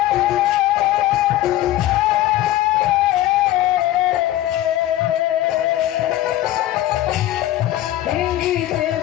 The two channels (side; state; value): right; quieter; 14.4 dB